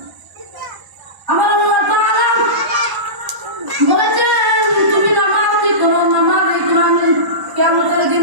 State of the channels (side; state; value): left; late; 1.0 ms